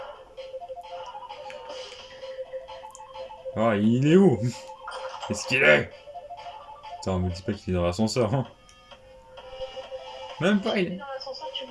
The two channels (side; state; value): both; identical; correlation 1.00